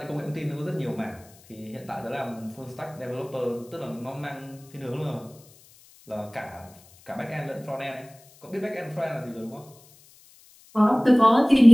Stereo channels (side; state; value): left; noise; hiss, 26 dB below the sound